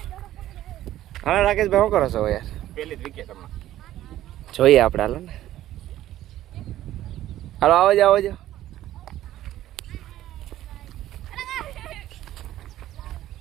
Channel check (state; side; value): quieter; left; 13.5 dB